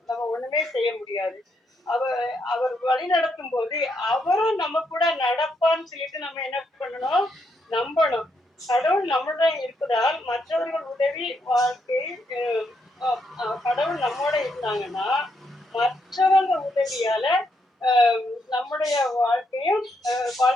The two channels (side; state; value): both; normal; correlation 0.78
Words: நம்ம ஒண்ணுமே செய்ய முடியாது. அவர் வழி நடத்தும் போது அவரும் நம்ம கூட நடப்பான்னு சொல்லிட்டு நம்ம என்ன பண்ணணும், நம்பணும். கடவுள் நம்முடன் இருப்பதால் மற்றவர்கள் உதவி வாழ்க்கை கடவுள் நம்மோட இருந்தாங்கன்னா மற்றவங்க உதவியால நம்முடைய